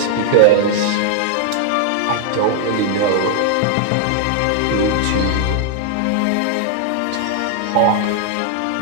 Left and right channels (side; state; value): both; different; correlation -0.01